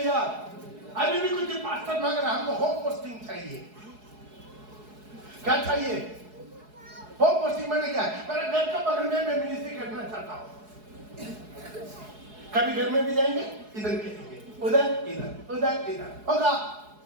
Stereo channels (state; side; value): late; left; 4.7 ms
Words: अभी भी कुछ पास्टर मांग रहा है, हमको होम पोस्टिंग चाहिए। क्या चाहिए? होम पोस्टिंग मैंने क्या है, मेरे घर का बगल में मैं मिनिस्ट्री करना चाहता हूं। कभी घर में भी जाएंगे, इधर भी जाएंगे, उधर इधर उधर इधर होगा,